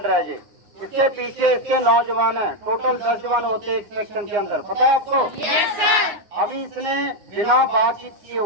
है जी। इसके पीछे इसके 9 जवान है, टोटल 10 जवान होते हैं एक सेक्शन के अंदर, पता है आपको? Yes sir. अभी इसने बिना बातचीत किए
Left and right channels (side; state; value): left; late; 9.7 ms